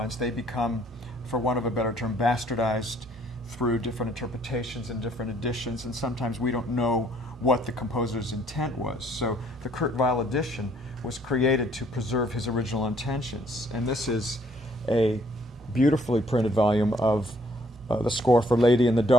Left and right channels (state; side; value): normal; both; correlation 0.63